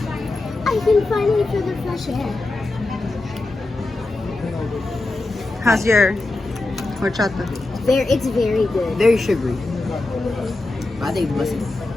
I can finally feel the fresh air. How's your horchata? It's very good. Very sugary. I think it's mustard.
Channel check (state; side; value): quieter; right; 3.0 dB